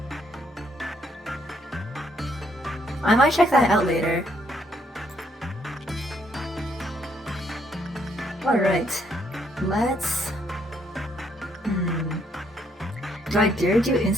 I might check that out later. Alright, let's... Do I dare do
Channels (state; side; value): normal; both; correlation 0.71